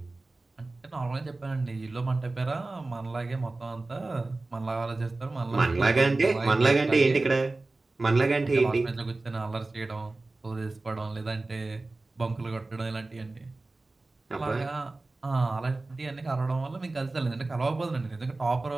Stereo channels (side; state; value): left; quieter; 3.2 dB